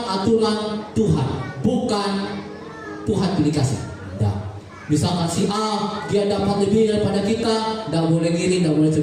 aturan Tuhan, bukan Tuhan pilih kasih. Nah, misalkan si A dia dapat lebih daripada kita, tidak boleh iri, tidak boleh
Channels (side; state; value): both; identical; correlation 1.00